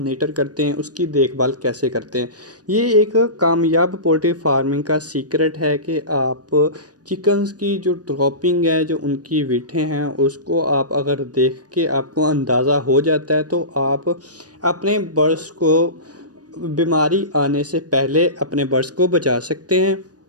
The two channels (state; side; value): late; left; 0.68 ms